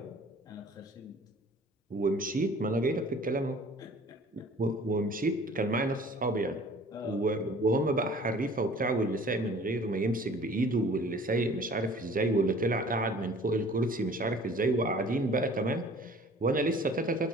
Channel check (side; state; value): both; normal; correlation 0.49